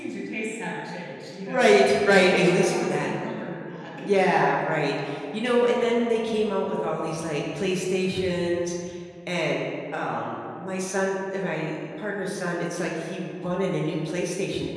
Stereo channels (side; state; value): both; identical; correlation 1.00